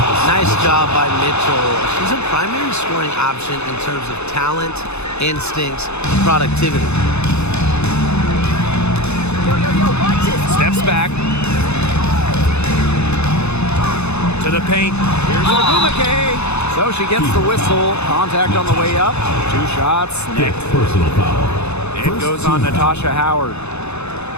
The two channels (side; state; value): right; late; 0.81 ms